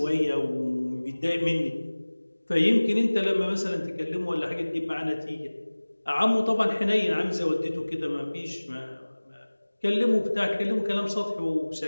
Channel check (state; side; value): inverted; both; correlation -1.00